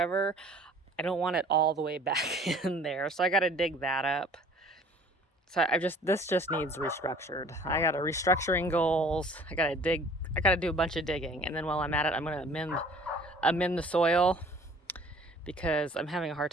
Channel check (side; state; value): both; normal; correlation 0.50